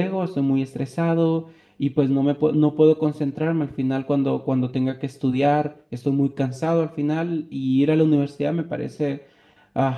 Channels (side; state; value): both; identical; correlation 1.00